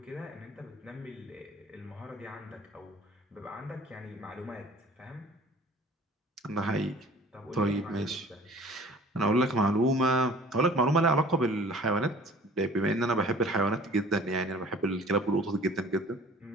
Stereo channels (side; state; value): both; normal; correlation 0.48